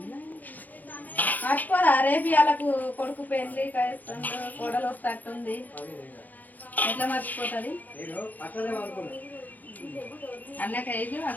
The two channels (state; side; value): late; right; 0.082 ms